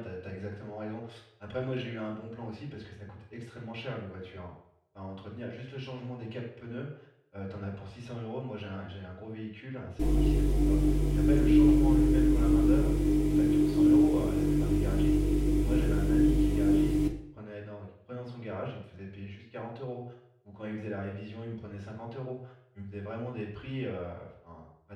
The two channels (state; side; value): identical; both; correlation 1.00